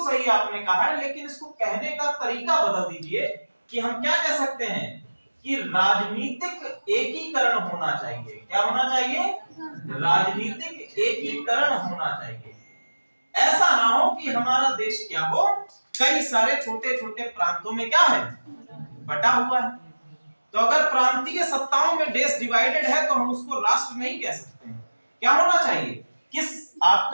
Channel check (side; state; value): both; inverted; correlation -1.00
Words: सही आपने कहा है, लेकिन इसको कहने का तरीका बदल दीजिए कि हम क्या कह सकते हैं कि राजनीतिक एकीकरण होना चाहिए। क्या होना चाहिए? राजनीतिक एकीकरण होना चाहिए। ऐसा ना हो कि हमारा देश क्या हो, कई सारे छोटे छोटे प्रांतों में क्या है, बटा हुआ है। तो अगर प्रांतीय सत्ताओं में देश डिवाइडेड है तो हम उसको राष्ट्र नहीं कह सकते हैं। क्या होना चाहिए? किस